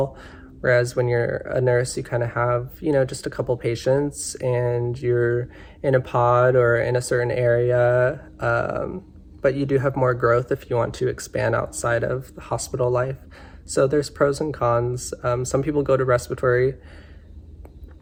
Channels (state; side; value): identical; both; correlation 1.00